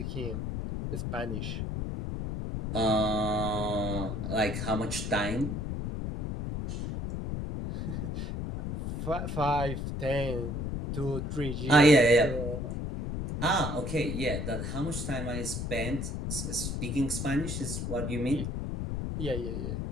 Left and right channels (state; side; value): noise; left; rumble, 3 dB below the sound